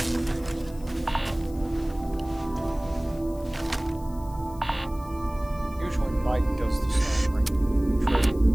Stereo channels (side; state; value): left; noise; hiss, 23 dB below the sound